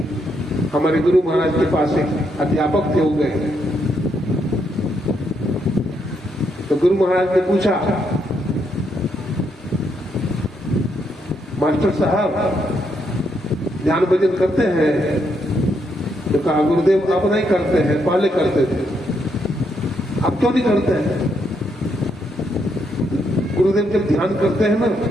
हमारे गुरु महाराज के पास एक अध्यापक थे, हो गए। तो गुरु महाराज ने पूछा, मास्टर साहब ध्यान भजन करते हैं? तो कहा गुरुदेव अब नहीं करते हैं, पहले करते थे। अब क्यों नहीं करते हैं? गुरुदेव जब ध्यान करते हैं ना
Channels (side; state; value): both; normal; correlation 0.77